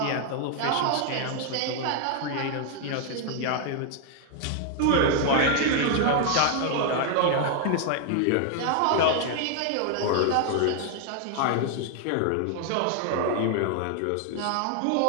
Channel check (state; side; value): different; both; correlation 0.00